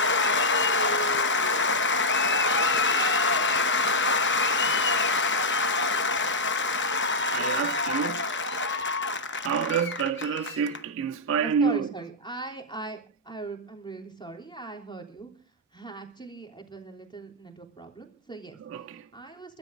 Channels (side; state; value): both; normal; correlation -0.07